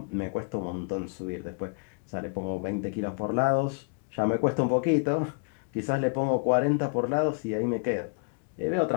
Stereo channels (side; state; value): right; quieter; 35.9 dB